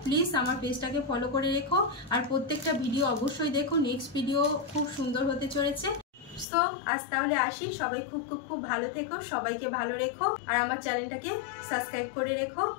প্লিজ আমার পেজটাকে ফলো করে রেখো, আর প্রত্যেকটা ভিডিও অবশ্যই দেখো। নেক্সট ভিডিও খুব সুন্দর হতে চলেছে। সো আজ তাহলে আসি, সবাই খুব খুব খুব ভালো থেকো, সবাইকে ভালো রেখো, আর আমার চ্যানেলটাকে সাবস্ক্রাইব করে রেখো।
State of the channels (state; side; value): drops out; right; at 6.5 s